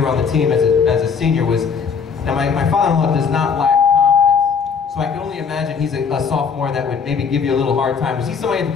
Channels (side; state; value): right; quieter; 6.1 dB